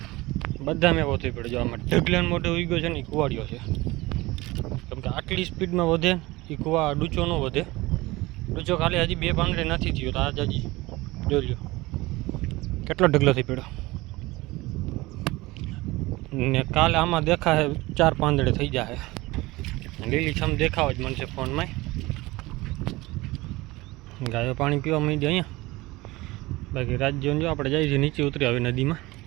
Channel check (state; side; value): quieter; left; 20.6 dB